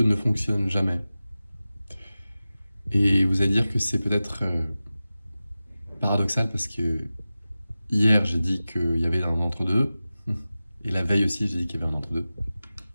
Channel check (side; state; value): both; inverted; correlation -0.96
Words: ne fonctionne jamais? Et vous allez dire que c'est peut-être paradoxal parce que hier j'ai dit qu'il y avait un entre-deux et la veille aussi j'ai dit qu'il y avait un entre-deux.